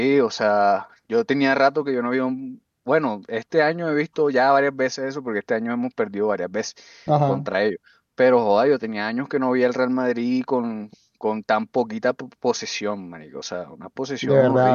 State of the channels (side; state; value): both; identical; correlation 1.00